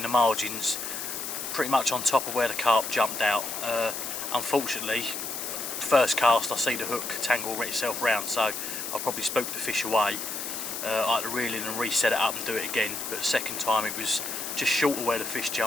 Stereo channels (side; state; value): left; noise; hiss, 5 dB below the sound